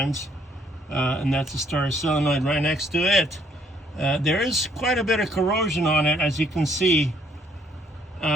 And that's the starter solenoid right next to it. There is quite a bit of corrosion on it, as you can see.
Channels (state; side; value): normal; both; correlation 0.66